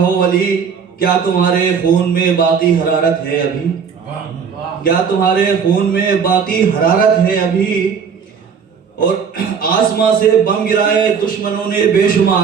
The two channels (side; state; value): left; quieter; 6.5 dB